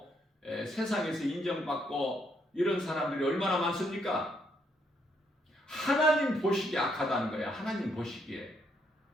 세상에서 인정받고 이런 사람들이 얼마나 많습니까? 하나님 보시기에 악하다는 거야. 하나님 보시기에.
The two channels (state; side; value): normal; both; correlation 0.74